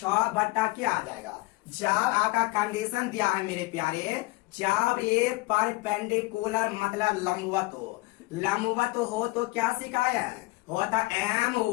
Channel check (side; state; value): right; quieter; 22.9 dB